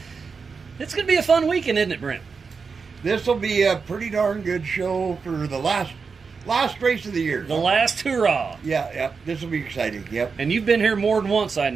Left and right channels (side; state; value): left; quieter; 5.2 dB